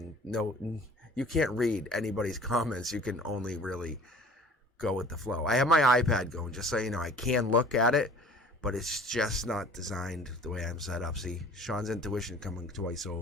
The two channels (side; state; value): both; normal; correlation 0.48